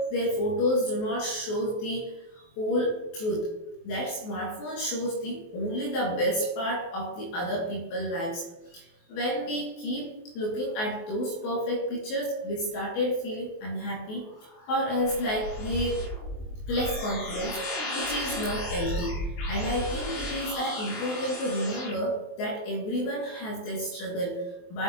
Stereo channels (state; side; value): late; right; 23 ms